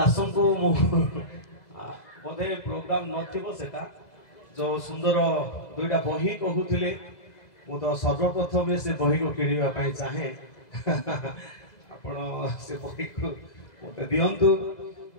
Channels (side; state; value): right; late; 2.0 ms